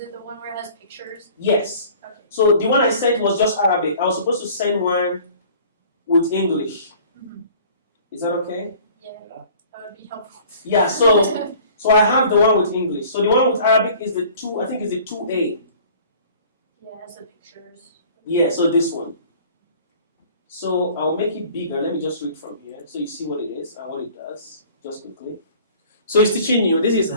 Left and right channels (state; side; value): inverted; both; correlation -0.49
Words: the one where it has pictures? Yes. Okay. So the one I sent was just Arabic. I was supposed to send one with English. Mm-hmm. Is that okay? Yeah. That would be helpful. Yeah, so I have the one with English. So the one with Arabic is the 2, I think is the 2A. Yeah, it has the pictures. Yeah, so this one. So I'll make it bigger. Let me just read from here so you see what it is and what it does. Just quickly. So it's teaching you, this is